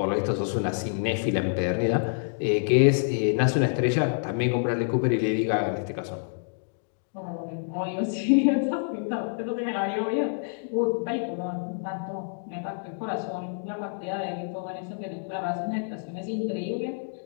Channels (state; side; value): silent; right; digital silence